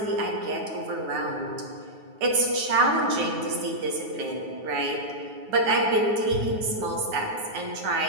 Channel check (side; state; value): left; late; 9.4 ms